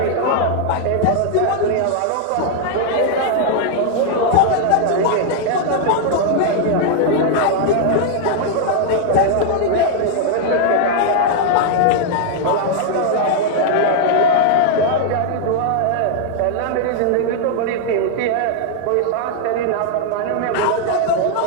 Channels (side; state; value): both; different; correlation -0.01